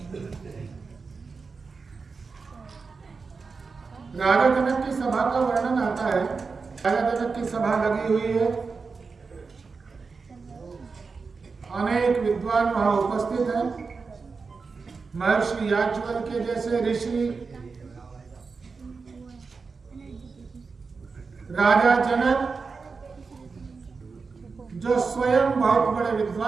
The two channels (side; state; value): left; quieter; 4.7 dB